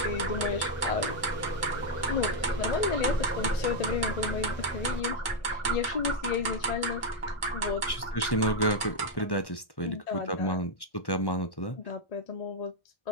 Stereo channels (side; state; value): right; late; 1.1 ms